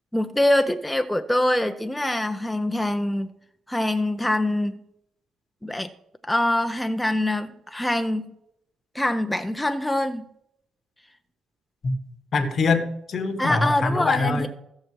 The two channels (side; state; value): both; normal; correlation 0.94